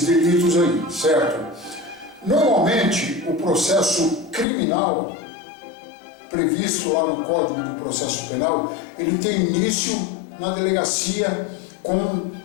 delitos aí, certo? Normalmente, o processo criminal previsto lá no Código de Processo Penal, ele tem início na delegacia com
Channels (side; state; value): right; drops out; at 4.5 s